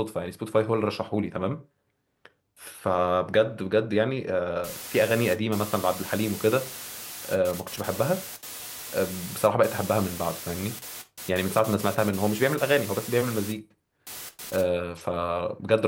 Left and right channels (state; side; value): identical; both; correlation 1.00